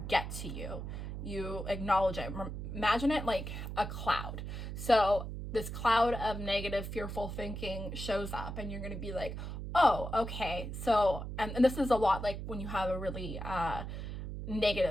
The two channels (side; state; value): right; noise; hum, 6 dB below the sound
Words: get to you. You acknowledge it. Imagine it like a cloud. So this cloud of negative, fearful thinking shows up, and you're going to be like, oh, okay. So, and this is a lot like when you have a really